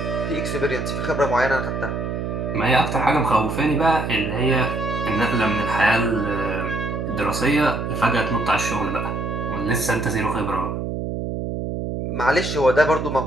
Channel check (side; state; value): right; noise; hum, 3 dB below the sound